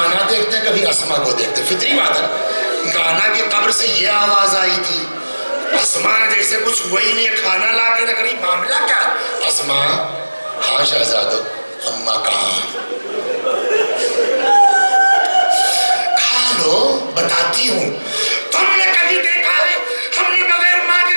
دیکھتے کبھی اسما کو دیکھتے, فطری بات ہے. نانا کی قبر سے یہ آواز آئی تھی, اسما جیسے کچھ وہی نہیں, کھانا لا کے رکھ رہی, معاملہ کیا؟ اسما, ہاں شہزادو, اماں کہاں؟ کھا لو, بتاتی ہوں. تم نے کبھی دیکھا ہے ہم نے بغیر ماں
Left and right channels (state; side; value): inverted; both; correlation -1.00